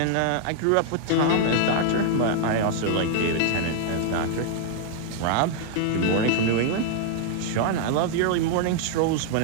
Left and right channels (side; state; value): both; different; correlation 0.00